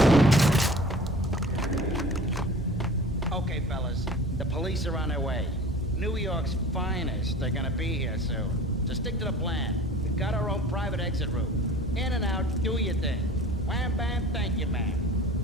Okay, fellas. The police are on their way. New York's finest are gonna be here soon. So stick to the plan. We've got our own private exit route. In and out, do your thing. Wham bam, thank you, ma'am.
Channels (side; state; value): both; normal; correlation 0.42